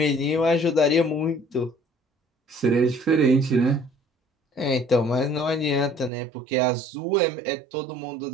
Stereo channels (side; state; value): left; drops out; at 6.1 s